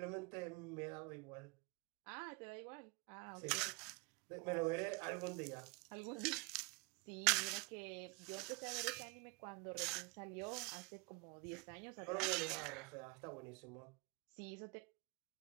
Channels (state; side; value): quieter; left; 28.9 dB